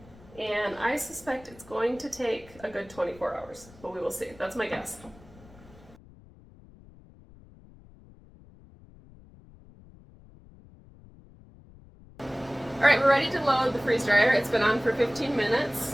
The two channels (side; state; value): left; noise; rumble, 23 dB below the sound